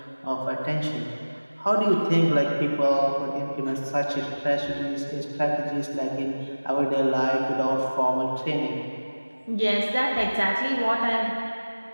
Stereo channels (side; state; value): both; inverted; correlation -1.00